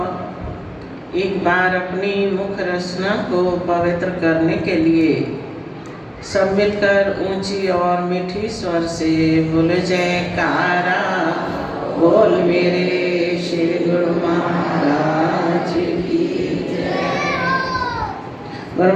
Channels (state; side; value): identical; both; correlation 1.00